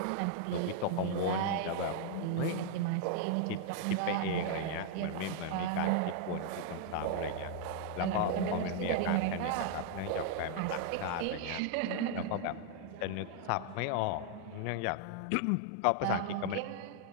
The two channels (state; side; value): different; both; correlation 0.00